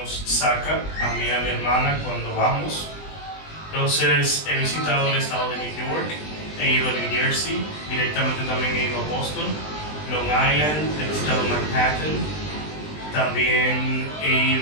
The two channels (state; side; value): late; right; 20 ms